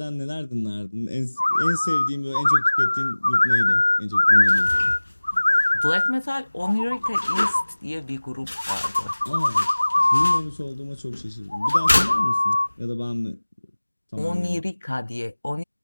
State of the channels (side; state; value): both; inverted; correlation -1.00